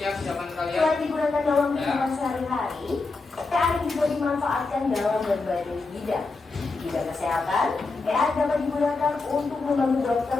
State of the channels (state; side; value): quieter; right; 3.8 dB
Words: zaman kalian. selain digunakan dalam Ya. kehidupan sehari-hari, AI juga dimanfaatkan dalam berbagai bidang. Di bidang kesehatan, AI dapat digunakan untuk membantu dokter